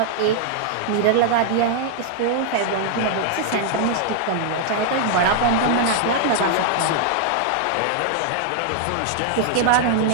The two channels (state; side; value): different; both; correlation 0.00